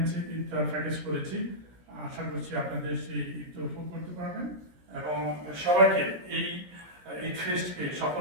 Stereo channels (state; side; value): late; left; 17 ms